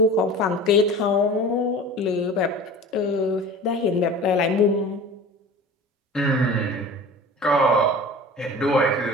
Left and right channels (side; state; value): both; normal; correlation 0.38